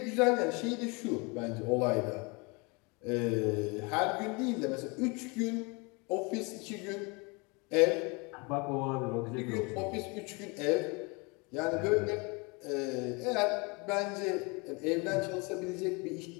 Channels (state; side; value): quieter; right; 29.1 dB